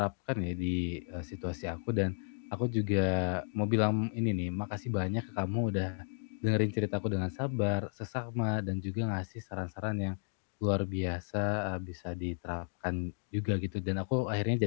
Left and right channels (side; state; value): right; silent; digital silence